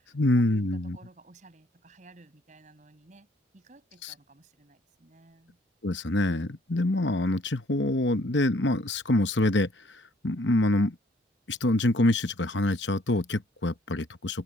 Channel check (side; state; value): both; normal; correlation 0.63